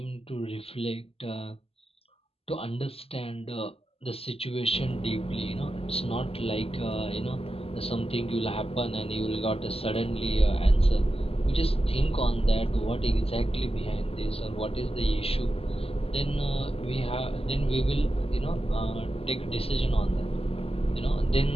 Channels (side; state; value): right; late; 0.28 ms